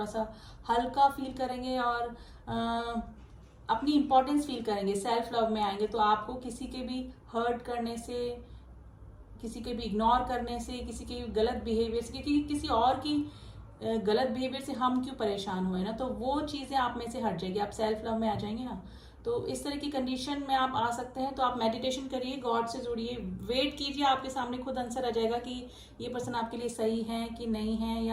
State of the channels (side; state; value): both; identical; correlation 1.00